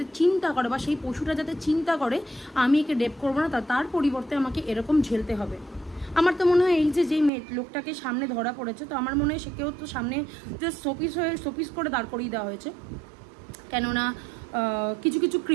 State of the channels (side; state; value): left; drops out; at 7.3 s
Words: চিন্তা করে, বা সেই পশুটা যাতে চিন্তা করে আমি একে রেপ করবো না, তার পরিবর্তে আমাকে এরকম ঝেলতে হবে। আমার তো মনে হয় এই যে যেই লোকটাকে সামনে ধরা পড়েছে, তো আমার মনে হয় সেকেও তো সামনে যে শোপিস করে দাঁড় করিয়ে দেওয়া হয়েছে। কেননা কিছু কিছু